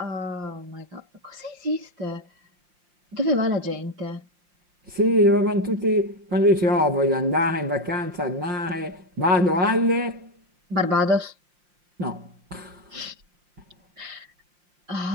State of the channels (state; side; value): late; left; 5.7 ms